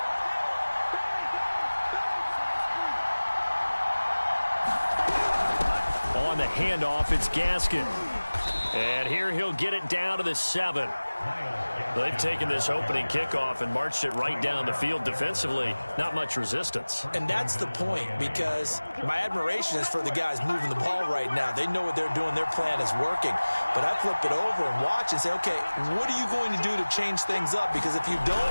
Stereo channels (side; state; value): both; inverted; correlation -1.00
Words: On the handoff, it's Gaskin. And here he'll get it down to the 7. They've taken this opening kickoff and marched it right down the field defensively. Not much resistance. And that's the point, because my admiration is for the guys moving the ball right now. They know what they're doing. Their plan is working. But I flip it over and watch and say, okay, what are you going to do to change things up? Because if you